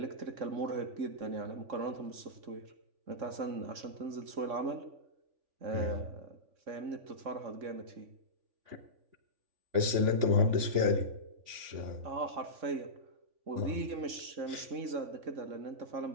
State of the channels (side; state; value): left; late; 3.5 ms